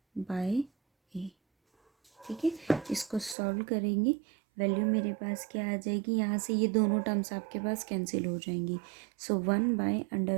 by a. ठीक है, इसको सॉल्व करेंगे, वैल्यू मेरे पास क्या आ जाएगी, यहाँ से ये दोनों टर्म्स आपके पास कैंसिल हो जाएंगी। सो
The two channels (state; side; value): drops out; left; at 3.4 s